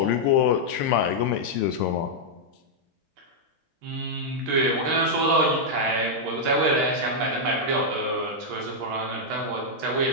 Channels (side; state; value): left; late; 13 ms